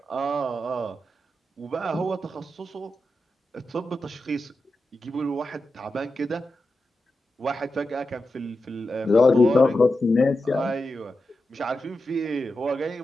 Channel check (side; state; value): both; normal; correlation 0.90